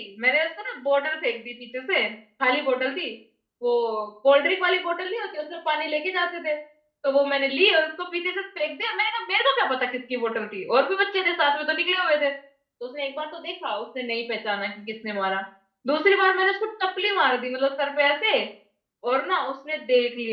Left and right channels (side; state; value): both; identical; correlation 1.00